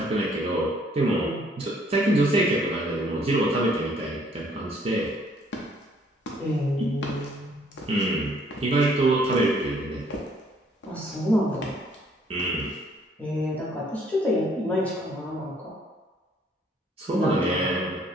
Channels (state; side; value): normal; both; correlation 0.63